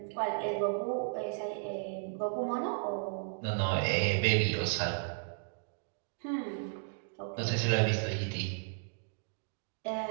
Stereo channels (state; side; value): silent; left; digital silence